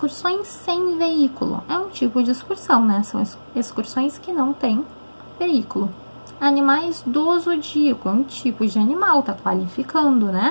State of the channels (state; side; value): inverted; both; correlation -1.00